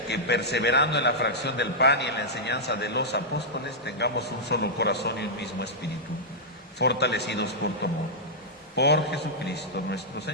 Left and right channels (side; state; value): both; normal; correlation -0.09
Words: que, perseverando en la fracción del pan y en la enseñanza de los apóstoles, tengamos un solo corazón y un mismo espíritu, fortalecidos por tu amor. Por Jesucristo nuestro